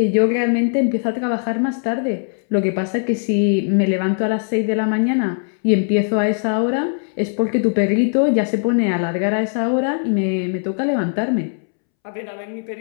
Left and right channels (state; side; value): silent; right; 66 dB below the other